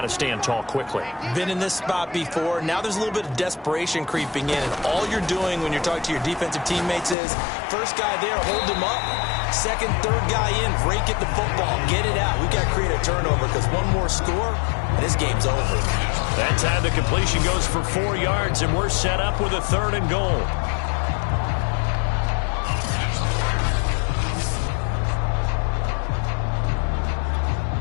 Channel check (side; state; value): right; drops out; at 7.2 s